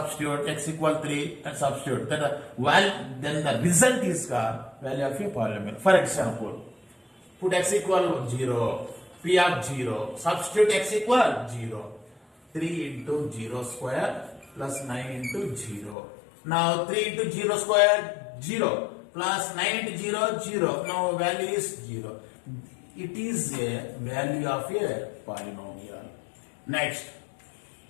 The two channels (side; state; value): right; drops out; at 16.0 s